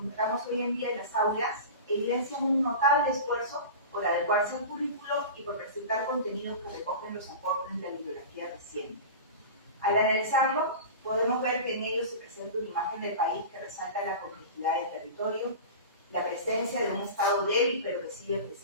hoy en día en las aulas evidencian un notable esfuerzo por adecuarse al currículo y por presentar contenidos que recogen los aportes de la bibliografía reciente. Al analizarlo, podemos ver que en ellos se presenta una imagen del país que resalta la complejidad del territorio, la presencia de un estado débil pero que sigue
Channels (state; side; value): inverted; both; correlation -0.31